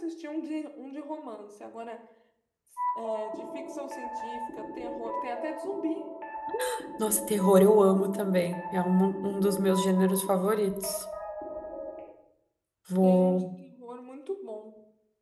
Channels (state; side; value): identical; both; correlation 1.00